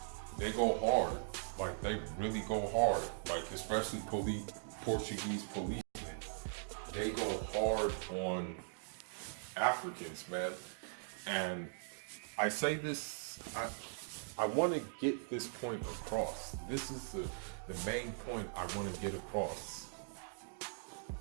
they go hard. Like, they really go hard. Like, especially Portuguese policemen. They go hard on Africans, man. And I say this, I want to get this point across. This is the main point I want to get across.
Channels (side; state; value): left; silent; digital silence